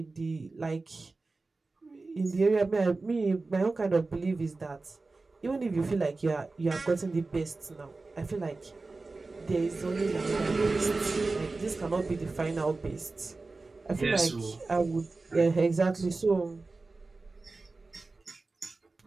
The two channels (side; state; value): left; quieter; 3.6 dB